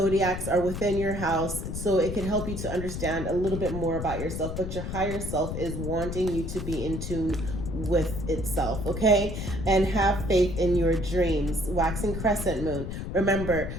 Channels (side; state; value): left; noise; rumble, 5 dB below the sound